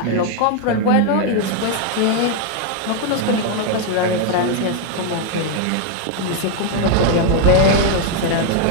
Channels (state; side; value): different; both; correlation 0.00